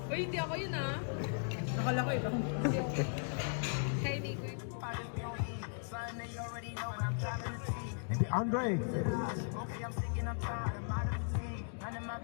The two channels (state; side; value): silent; right; digital silence